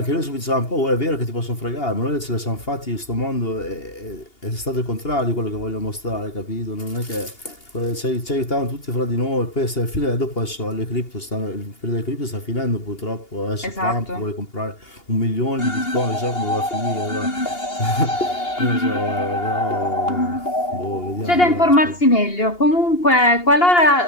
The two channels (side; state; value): right; late; 2.8 ms